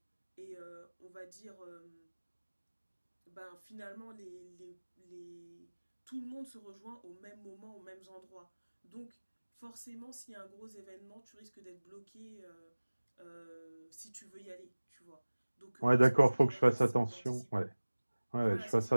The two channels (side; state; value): both; inverted; correlation -1.00